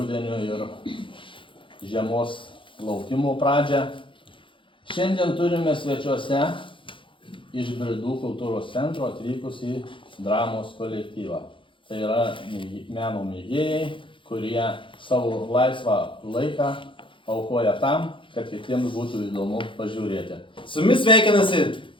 ir žiemos laukimo pradžią. Šiandien turime svečiuose iš Bridų kultūros centro atvykusį dramos kolektyvą. Tai yra meno mėgėjai, kurie savo laisvą laiką aukoja tam, kad kitiems būtų įdomu pažiūrėti. Su jumis sveikinasi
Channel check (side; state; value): right; late; 0.25 ms